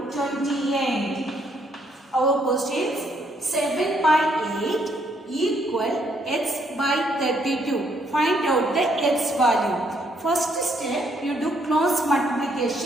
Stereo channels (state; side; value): normal; both; correlation 0.71